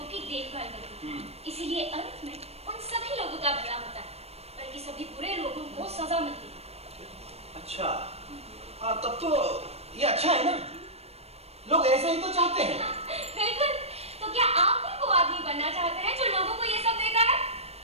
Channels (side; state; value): left; late; 0.30 ms